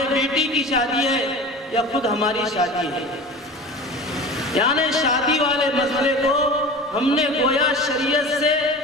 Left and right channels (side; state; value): both; normal; correlation 0.35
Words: بیٹی کی شادی ہے، یا خود ہماری شادی ہے، یعنی شادی والے مسئلے کو ہم نے گویا شریعت سے